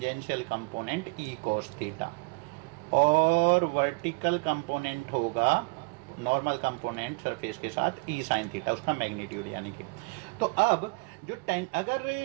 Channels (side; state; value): left; quieter; 29.8 dB